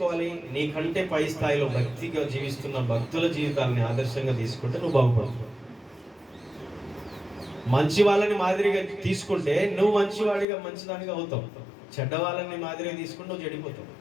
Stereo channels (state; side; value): drops out; right; at 10.5 s